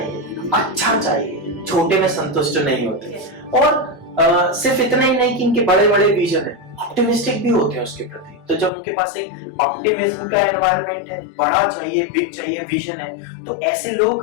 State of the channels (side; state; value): right; drops out; at 8.7 s